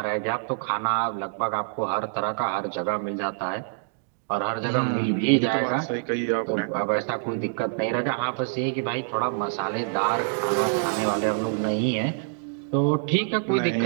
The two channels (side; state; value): left; silent; digital silence